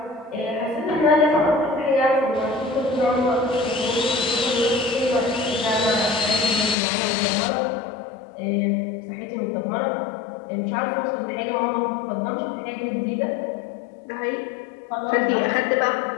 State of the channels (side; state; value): right; drops out; at 6.8 s